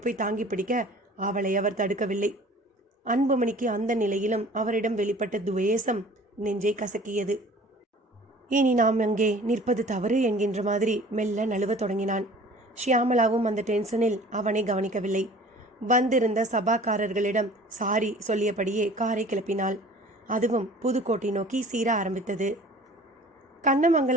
போய் தாங்கி பிடிக்க அவளை அவர் தடுக்கவில்லை. அன்புமணிக்கு அந்த நிலையிலும் அவரிடம் வெளிப்பட்ட துவேஷம் நெஞ்சை கசக்கியது. இனி நாம் அங்கே நிற்பது தவறு என்கின்ற மாதிரி மெல்ல நழுவ தொடங்கினான். ஷியாமலாவும் அந்த டென்ஷனில் அவனை கவனிக்கவில்லை. வந்திருந்த சபாக்காரர்களிடம் சாரி சொல்லியபடியே காரை கிளப்பினாள். அதுவும் புதுக்கோட்டை நோக்கி சீர ஆரம்பித்தது.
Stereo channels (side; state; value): both; normal; correlation 0.47